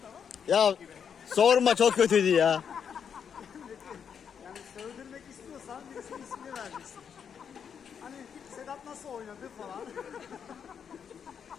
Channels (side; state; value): right; quieter; 7.4 dB